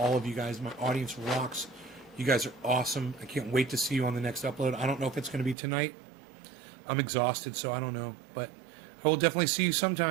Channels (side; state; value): left; drops out; at 5.6 s